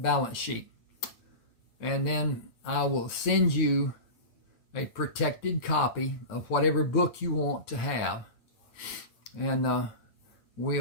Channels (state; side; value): late; right; 8.9 ms